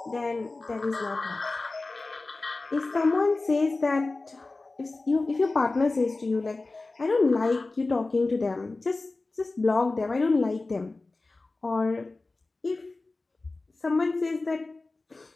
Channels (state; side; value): quieter; right; 3.4 dB